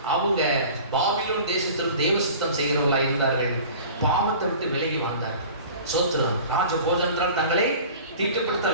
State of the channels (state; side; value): inverted; both; correlation -0.42